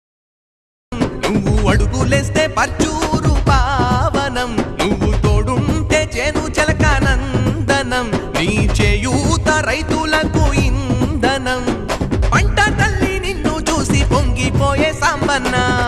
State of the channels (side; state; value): both; identical; correlation 1.00